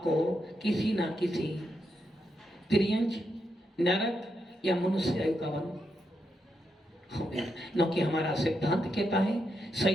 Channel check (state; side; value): normal; both; correlation 0.83